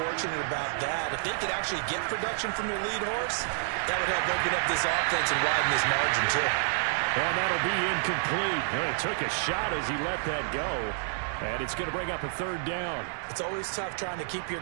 about that. If they could actually get production from their lead horse, that would help open up this offense and widen this margin, too. Well, that'll be incomplete. Well, he took a shot as he let that go. And it's going to bring up a 3rd down. It's always tough trying to keep your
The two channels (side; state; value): left; silent; digital silence